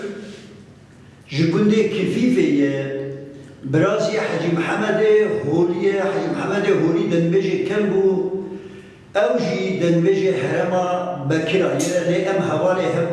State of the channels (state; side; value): identical; both; correlation 1.00